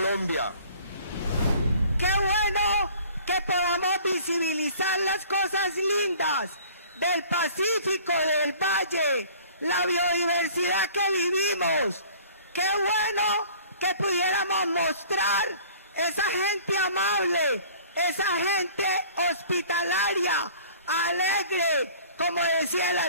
Qué bueno que podamos visibilizar las cosas lindas del Pacífico, del Valle, la biodiversidad que vivimos. Qué bueno que pudiéramos mostrar esa gente amable, esa gente hospitalaria, alegre, como decía el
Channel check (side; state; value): both; inverted; correlation -0.50